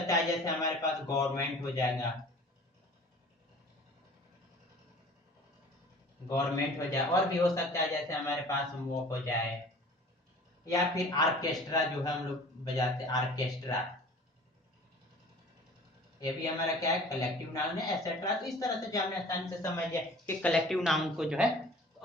है जैसे हमारे पास गवर्नमेंट हो जाएगा, गवर्नमेंट हो जाए। और भी हो सकता है जैसे हमारे पास वो हो जाए, या फिर आर्केस्ट्रा जो है हम लोग बजाते हैं, आर्केस्ट्रा, ये भी हमारा क्या है, कलेक्टिव नाउन है, एटसेट्रा। तो इस तरह से जो हमने आसानी से समझ लिया कि कलेक्टिव नाउन को जो है। तो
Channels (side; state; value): both; normal; correlation 0.46